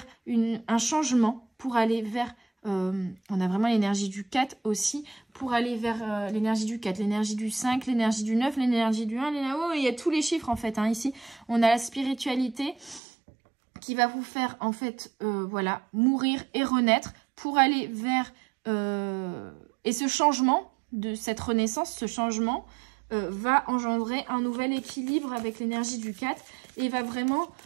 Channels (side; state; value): left; drops out; at 13.0 s